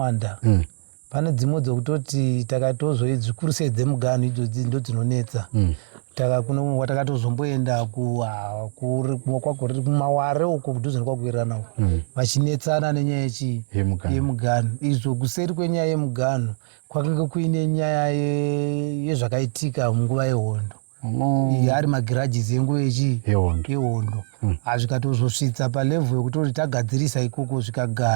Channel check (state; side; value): silent; left; digital silence